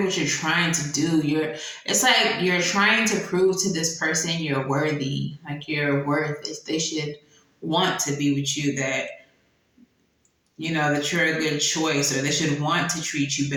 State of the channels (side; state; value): both; identical; correlation 1.00